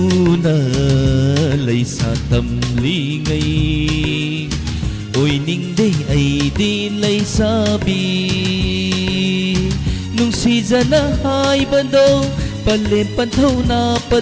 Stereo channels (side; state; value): both; identical; correlation 1.00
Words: na lấy xa tâm lý ngay Ôi ninh đây ấy đi lấy xa bi Nung si ra na hai ban đâu Palem panthau na